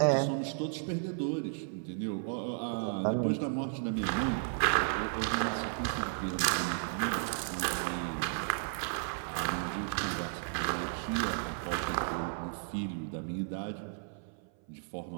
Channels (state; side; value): silent; left; 55 dB below the other